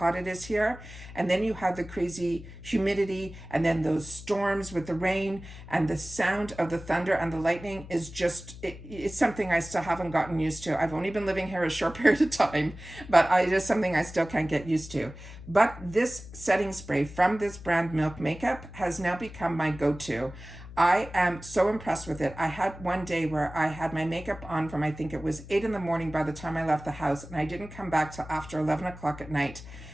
it is here. And then you have the crazy humidity, and then those storms with the rain, and the sound of the thunder and the lightning is just, it's something I still haven't gotten used to. I've only been living here a short period of time, but it is something I still can't get used to. But this setting spray from this brand, Milk Makeup, has now become my go-to. I am so impressed with it. I had one day where I had my makeup on from, I think it was 8 in the morning by the time I left the house, and I didn't come back till after 11 o'clock at night.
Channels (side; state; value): left; noise; hum, 15 dB below the sound